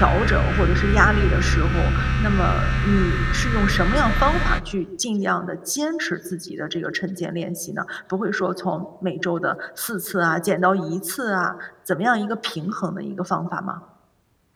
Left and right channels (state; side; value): identical; both; correlation 1.00